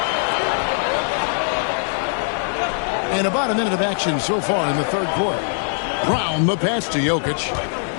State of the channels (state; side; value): silent; right; digital silence